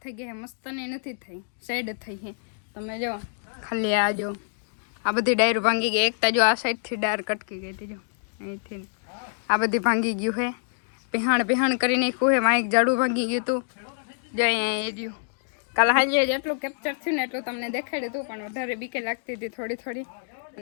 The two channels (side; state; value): right; silent; digital silence